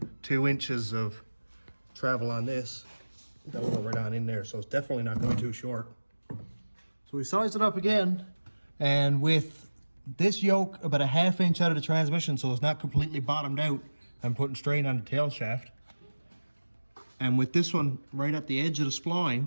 2 inches of travel on this. That'll go right on in there, so it's definitely not going too short. So we sized it up again, and with this yoke about a ½ inch out of the transmission so it's not completely bottomed out, I'm putting strain on the tail shaft. And with this one right at the edge of the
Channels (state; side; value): inverted; both; correlation -1.00